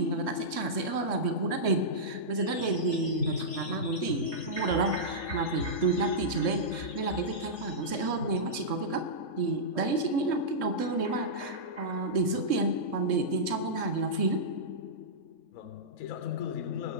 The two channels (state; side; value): late; right; 3.2 ms